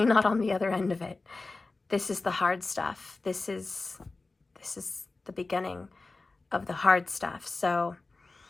not on the other end of it. This is the hard stuff. This is the beginning of the hard stuff. So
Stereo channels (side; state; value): right; quieter; 3.5 dB